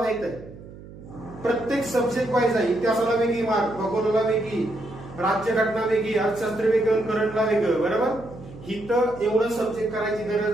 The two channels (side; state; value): right; noise; hum, 17 dB below the sound